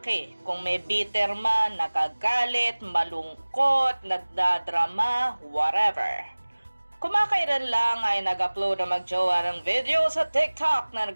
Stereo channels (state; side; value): inverted; both; correlation -1.00